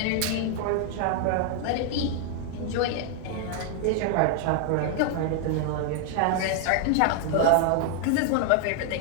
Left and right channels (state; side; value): different; both; correlation 0.00